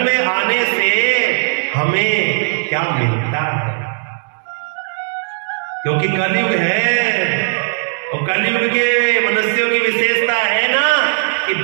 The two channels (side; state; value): left; silent; digital silence